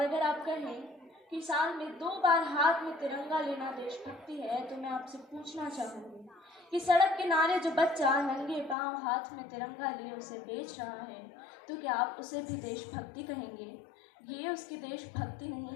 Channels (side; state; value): right; drops out; at 8.8 s